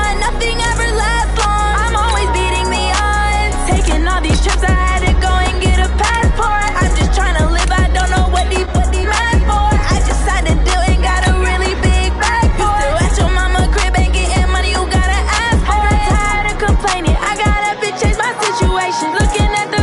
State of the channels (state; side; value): identical; both; correlation 1.00